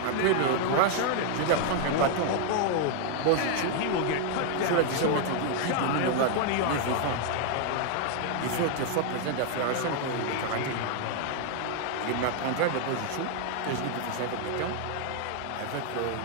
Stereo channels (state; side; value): different; both; correlation 0.00